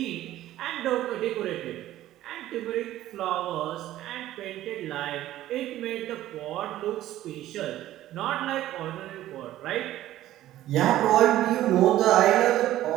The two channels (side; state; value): left; quieter; 14.1 dB